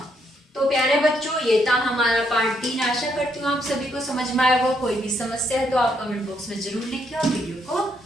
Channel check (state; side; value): normal; both; correlation 0.74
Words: तो प्यारे बच्चों, ये था हमारा पार्ट 3। आशा करती हूँ आप सभी को समझ में आया होगा। कोई भी समस्या है तो आप कमेंट बॉक्स में जरूर लिखिए और वीडियो को